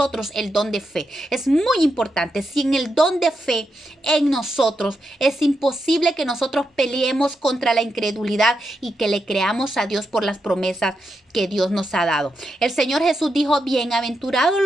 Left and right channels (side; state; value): both; normal; correlation 0.85